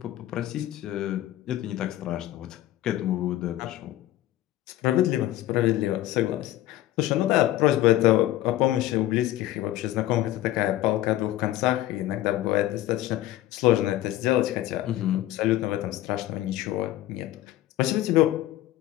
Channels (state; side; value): quieter; right; 14.5 dB